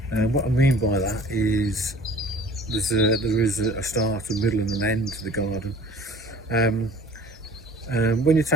What I mean by that is there is a start, a middle and an end to the garden. When you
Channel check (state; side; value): normal; both; correlation 0.49